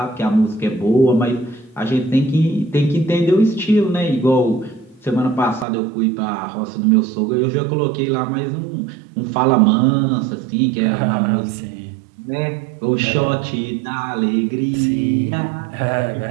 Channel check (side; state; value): left; drops out; at 5.7 s